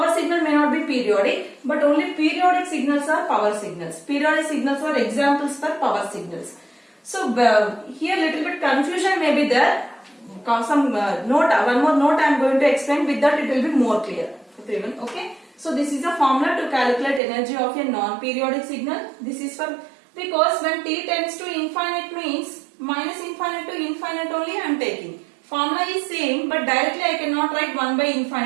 signal may not be periodic, but only periodic signals are power signals. Periodic signals are examples for power signals. So here little bit confusion may be there. Some note, one more note I am going to explain, with that it will be more clear. Okay. So this is a formula to calculate energy of a non-periodic signal. This is for, because when t tends to infinite means minus infinite to infinite only I am taking. formula is same, but directly I cannot write 1 by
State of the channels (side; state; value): left; drops out; at 17.2 s